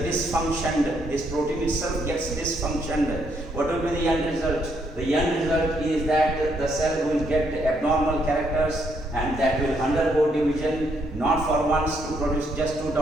dysfunctioned, this protein itself gets dysfunctioned, what will be the end result? The end result is that the cell will get abnormal characters and that will undergo division, not for once to produce just two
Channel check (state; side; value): normal; both; correlation 0.73